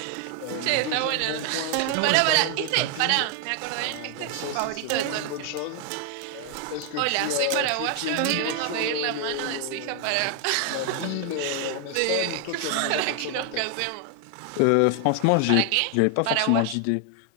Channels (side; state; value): both; different; correlation 0.00